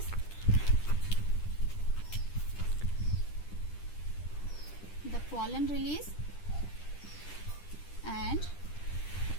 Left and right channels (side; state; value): right; late; 10 ms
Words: the pollen release and